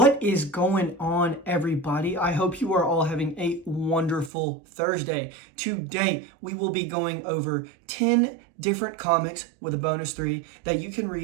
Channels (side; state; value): left; drops out; at 4.3 s